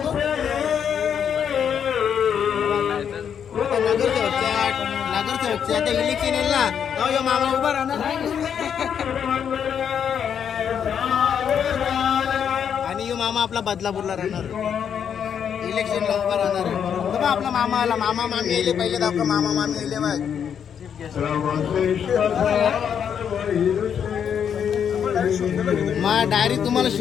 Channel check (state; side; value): quieter; right; 8.0 dB